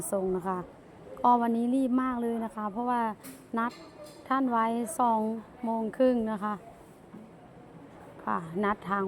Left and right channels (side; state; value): both; identical; correlation 1.00